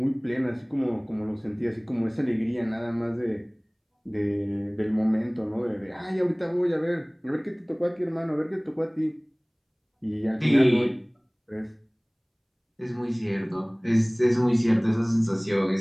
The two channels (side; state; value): both; identical; correlation 1.00